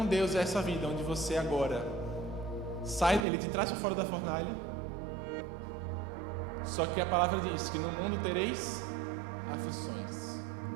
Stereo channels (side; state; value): left; drops out; at 3.2 s